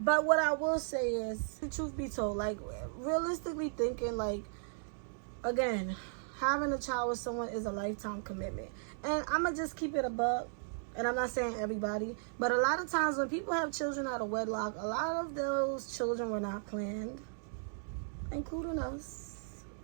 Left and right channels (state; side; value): silent; left; digital silence